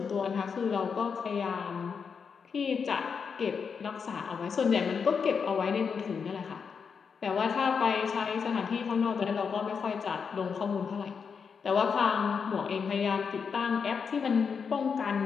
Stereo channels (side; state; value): right; quieter; 6.1 dB